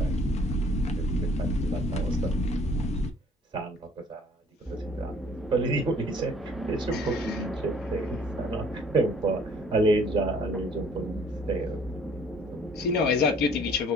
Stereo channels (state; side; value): normal; both; correlation 0.56